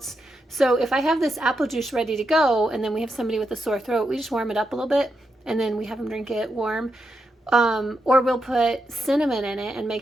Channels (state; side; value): normal; both; correlation 0.84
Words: So if I have this apple juice ready to go and then we have somebody with a sore throat, we just warm it up a little bit and then we have them drink it warm. Or we'll put cinnamon in it and